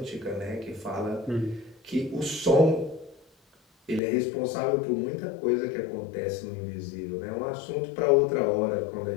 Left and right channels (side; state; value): right; drops out; at 4.0 s